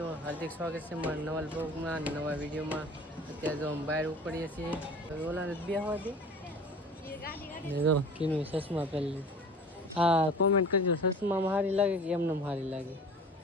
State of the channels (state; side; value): normal; both; correlation 0.42